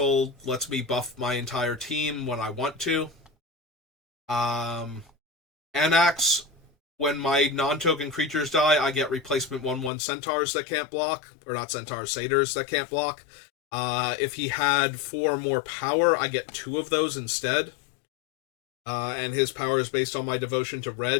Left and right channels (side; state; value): right; drops out; at 9.9 s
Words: lets me buff my entire team when I want to. Anax, when my non-token creatures die, I get replacement 1/1 centaurs that can't block. Or not centaurs, satyrs that can't block. If he had 4 more power, I get 2 of those instead. And his power is based on my devotion to